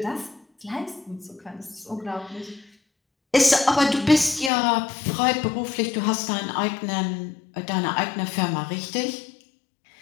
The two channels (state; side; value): drops out; right; at 4.5 s